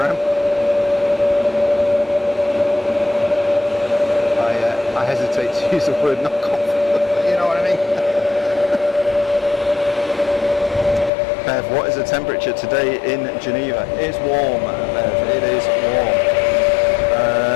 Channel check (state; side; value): drops out; right; at 11.1 s